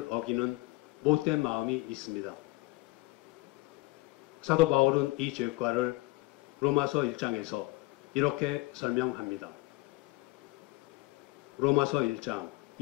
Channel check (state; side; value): quieter; right; 21.1 dB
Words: 어기는 못된 마음이 있습니다. 사도 바울은 이 죄과를 로마서 1장에서 이렇게 설명합니다. 로마서 1장